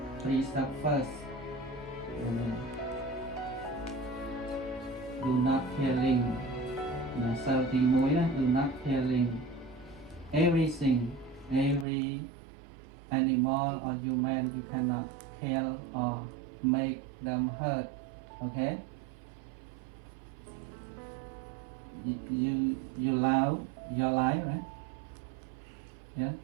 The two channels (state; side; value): drops out; left; at 11.9 s